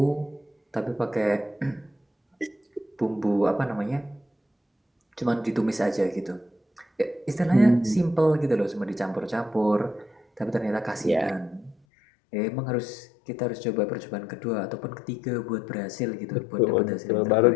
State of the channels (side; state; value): right; drops out; at 11.8 s